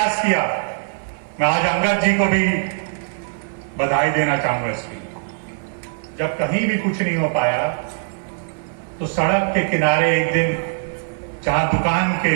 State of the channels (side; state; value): left; silent; 59 dB below the other